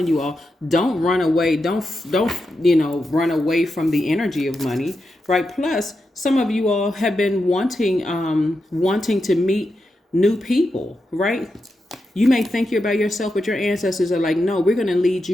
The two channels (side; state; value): both; normal; correlation 0.87